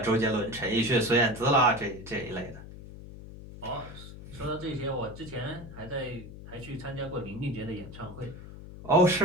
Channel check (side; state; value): left; noise; hum, 14 dB below the sound